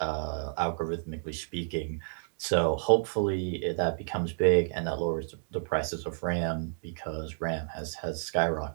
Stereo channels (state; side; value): silent; left; digital silence